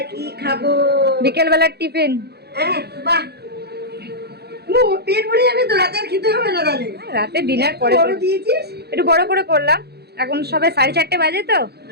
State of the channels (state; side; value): late; left; 0.47 ms